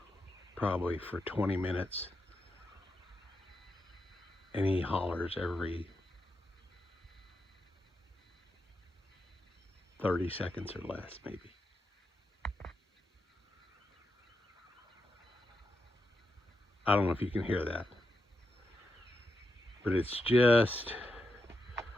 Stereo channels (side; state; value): both; normal; correlation 0.86